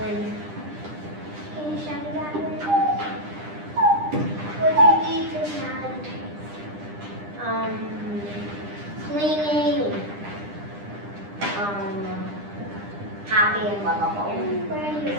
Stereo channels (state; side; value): late; left; 9.9 ms